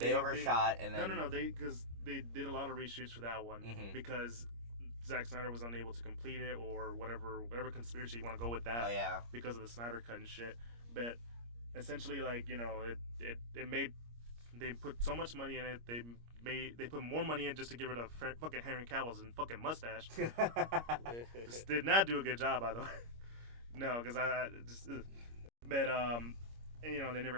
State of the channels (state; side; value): late; left; 25 ms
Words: overshot and then no. Because they did a lot of reshoots for that one because Zack Snyder was unable to complete it, or whatever conspiracy you want to go with that. Oh yeah. Because of the Snyder cut and shit. But essentially, like it made they put so much money in it. They put more money in just to get rid of fucking Henry Cavill's and fucking mustache. Just did not do a good job, by the way. No, because I just. But they never